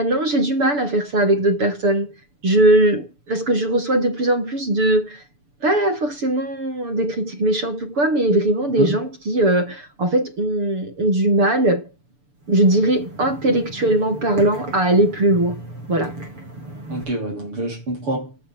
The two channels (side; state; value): left; late; 6.9 ms